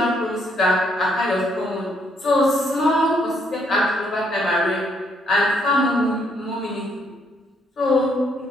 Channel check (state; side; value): normal; both; correlation 0.71